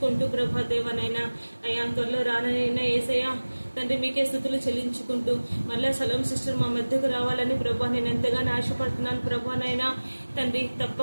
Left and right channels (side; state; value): both; inverted; correlation -1.00